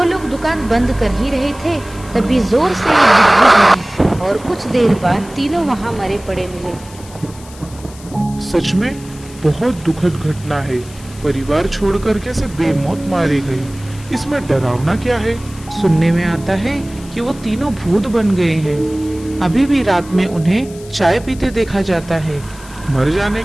लोग दुकान बंद कर ही रहे थे, तभी जोर से एक बिजली गिरी और कुछ देर बाद तीनों वहां मरे पड़े मिले। सच में बहुत दुखद घटना है। परिवार छोड़कर कैसे बेमौत मारे गए। इसमें डरावना क्या है? सुनने में आता है कि वो तीनों भूत बन गए हैं। अभी भी रात में उन्हें चाय पीते देखा जाता है। मर जाने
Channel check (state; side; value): noise; left; hiss, 21 dB below the sound